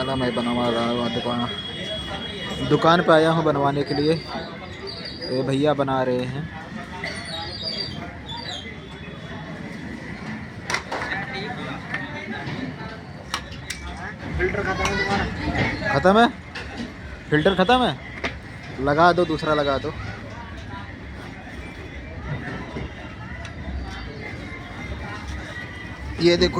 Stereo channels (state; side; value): identical; both; correlation 1.00